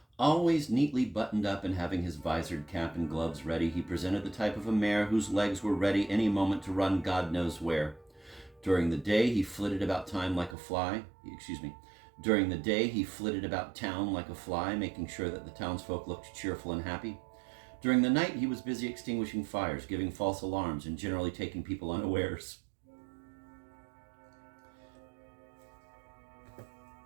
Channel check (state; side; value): drops out; left; at 10.6 s